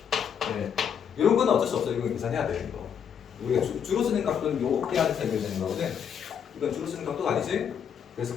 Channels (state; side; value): quieter; right; 7.9 dB